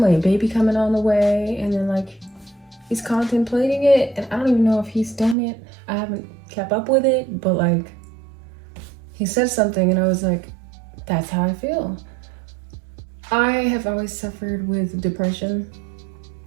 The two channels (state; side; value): drops out; left; at 5.4 s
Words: baby coming on the way, and then like he's contemplating it, and I don't even know if he's done it. I haven't kept up with it, but like he said something and I was like, that's how I feel. I have always suffered with depression.